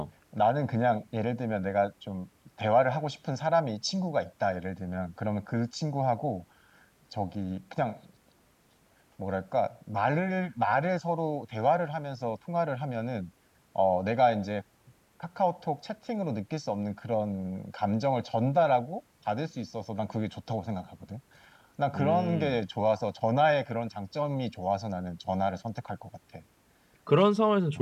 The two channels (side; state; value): both; identical; correlation 1.00